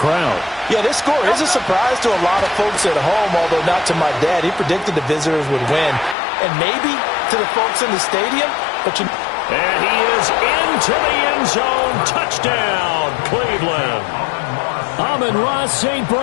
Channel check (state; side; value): drops out; right; at 6.2 s